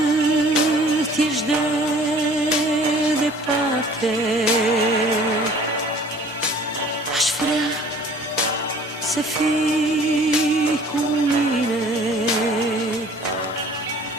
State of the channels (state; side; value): normal; both; correlation 0.51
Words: ești de departe, aș vrea să fii cu mine